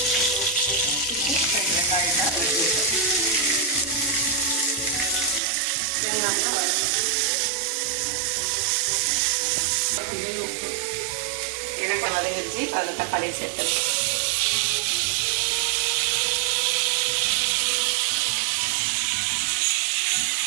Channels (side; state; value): left; drops out; at 5.4 s